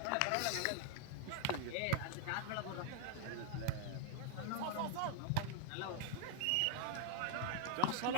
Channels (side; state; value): both; different; correlation -0.01